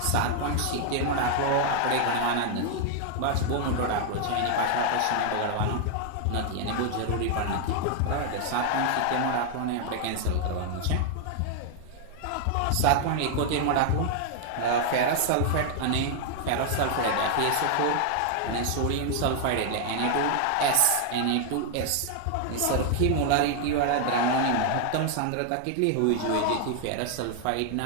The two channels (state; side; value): different; both; correlation 0.00